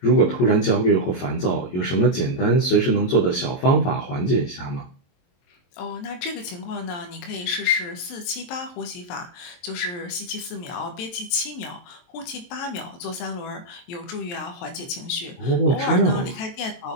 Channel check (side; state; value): right; late; 23 ms